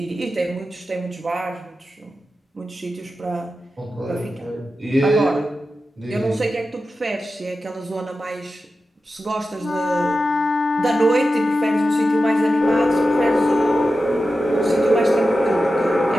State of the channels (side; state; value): both; normal; correlation 0.92